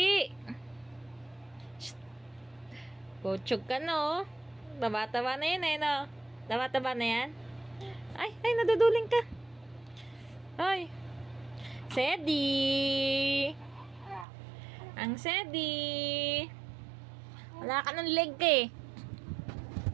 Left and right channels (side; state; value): left; drops out; at 14.2 s